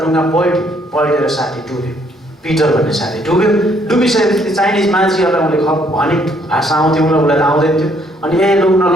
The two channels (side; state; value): both; normal; correlation 0.67